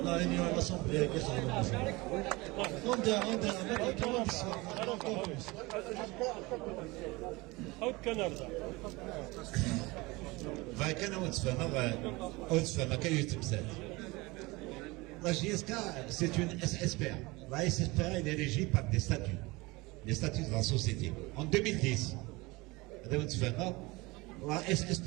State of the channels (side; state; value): left; quieter; 23.2 dB